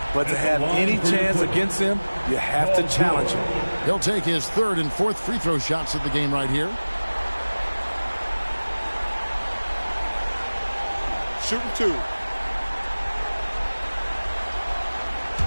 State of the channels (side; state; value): both; inverted; correlation -1.00